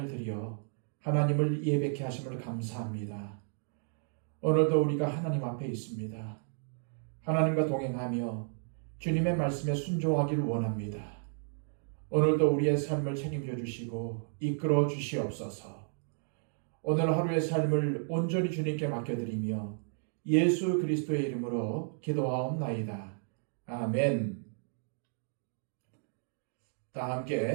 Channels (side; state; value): left; silent; 56 dB below the other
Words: 들여 하나님을 예배케 하심을 감사합니다. 오늘도 우리가 하나님 앞에 있습니다. 하나님과 동행하며 주님의 말씀에 순종하기를 원합니다. 오늘도 우리의 삶을 책임져 주시고 이끌어 주시옵소서. 오늘 하루의 삶을 온전히 주님께 맡겨드리며 예수 그리스도의 이름으로 기도하옵나이다. 아멘. 다